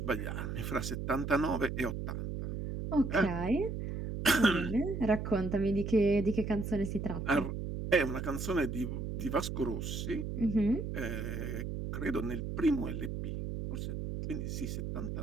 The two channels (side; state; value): right; noise; hum, 4 dB below the sound